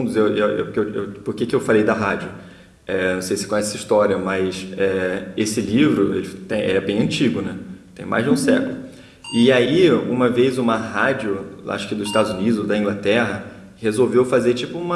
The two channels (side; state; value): both; identical; correlation 1.00